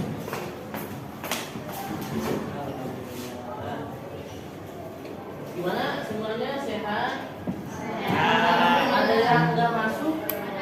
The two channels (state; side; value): identical; both; correlation 1.00